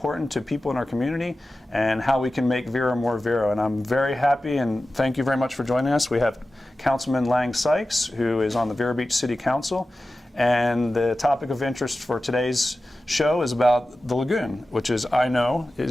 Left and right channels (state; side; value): normal; both; correlation 0.95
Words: to people in our community, and how we can make Vero more Vero. And I'm very happy, and thank you very much for joining us. We have Councilman Lange Sykes, who is on the Vero Beach City Council, and the topic of interest for today's show is about the lagoon, which is, and